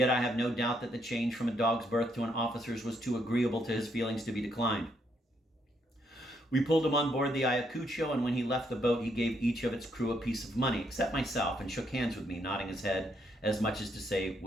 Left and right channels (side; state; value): both; normal; correlation 0.74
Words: I have no doubt that the change from a dog's berth to an officer's was too agreeable to his feelings to be declined. We pulled him on board the Ayacucho, and when he left the boat, he gave each of its crew a piece of money, except myself, and shook hands with me, nodding his head, as much as to say,